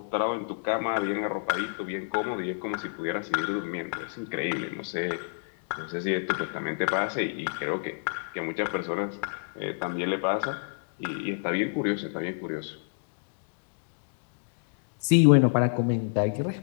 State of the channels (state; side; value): silent; right; digital silence